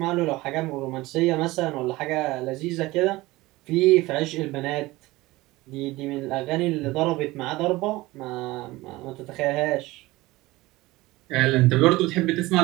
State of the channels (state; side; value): quieter; left; 19.7 dB